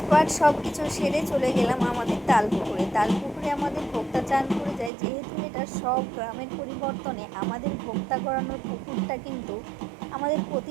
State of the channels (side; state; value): left; drops out; at 4.9 s